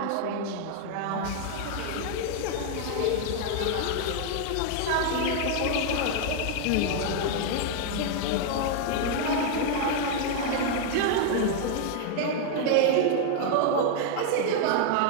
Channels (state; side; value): different; both; correlation 0.00